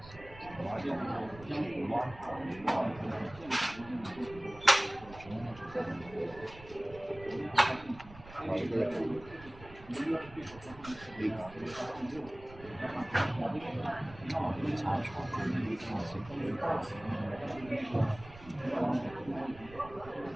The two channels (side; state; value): right; noise; rumble, 18 dB below the sound